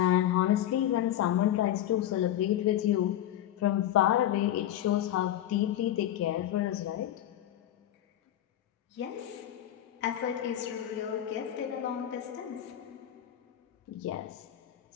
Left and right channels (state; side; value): quieter; right; 12.1 dB